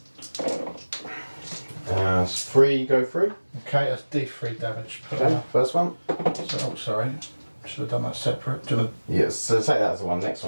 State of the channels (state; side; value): inverted; both; correlation -1.00